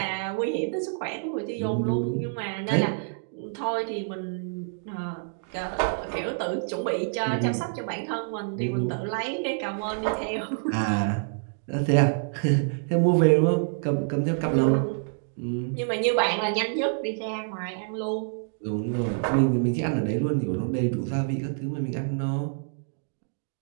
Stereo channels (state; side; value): silent; left; digital silence